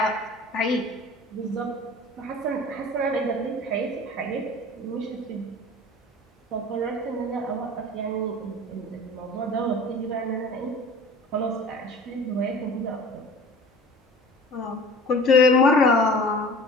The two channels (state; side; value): normal; both; correlation 0.42